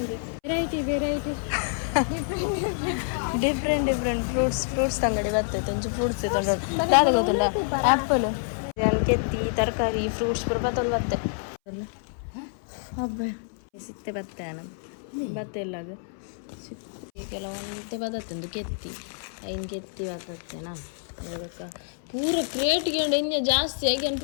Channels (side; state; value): right; silent; 60 dB below the other